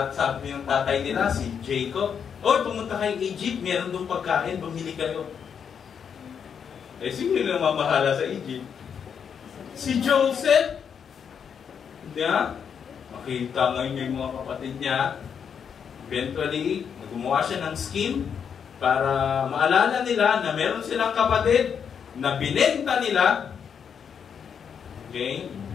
sabi ng tatay nila, si Jacob, "Oy, pumunta kayong Egypt, meron doon pagkain, bumili kayo." Eh, sino yung mamahala sa Egypt? Si Joseph. Hindi ha? Makita ngayon yung mga kapatid niya. Eventually, gumawa siya ng scheme para maalala nila na meron silang kapatid na binenta nila. Okay?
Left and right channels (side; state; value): right; quieter; 7.3 dB